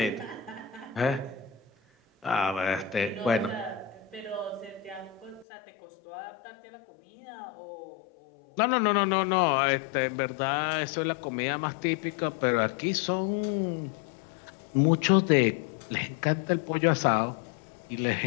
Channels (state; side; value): drops out; right; at 5.5 s